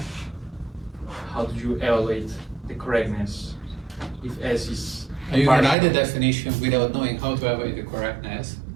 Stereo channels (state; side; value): drops out; left; at 5.8 s